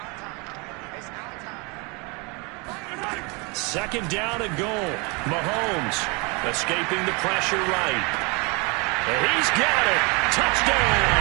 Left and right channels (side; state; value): left; quieter; 29.8 dB